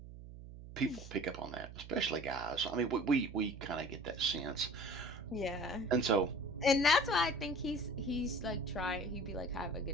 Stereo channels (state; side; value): noise; right; hum, 14 dB below the sound